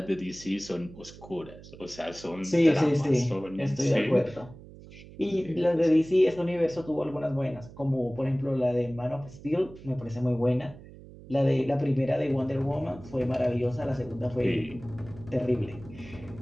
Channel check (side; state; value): right; noise; hum, 18 dB below the sound